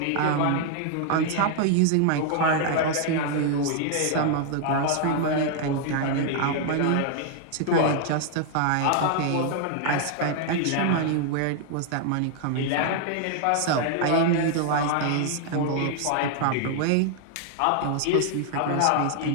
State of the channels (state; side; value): different; both; correlation 0.00